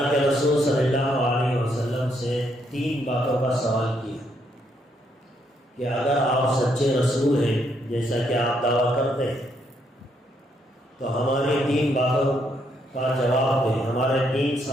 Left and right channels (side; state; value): both; normal; correlation 0.74